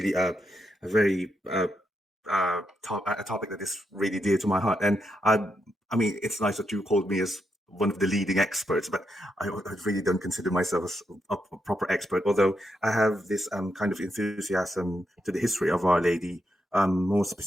a very a topic that is really dear to my heart, and I mean, it's nice that you called me as one of the leading experts, but I really don't consider myself as a proper expert. Although I have this kind of enthusiasm to the history of Our Lady, more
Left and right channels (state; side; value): normal; both; correlation 0.83